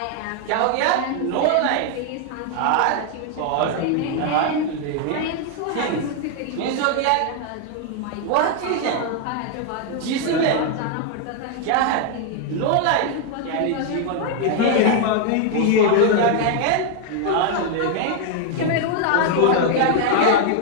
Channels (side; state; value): both; different; correlation 0.00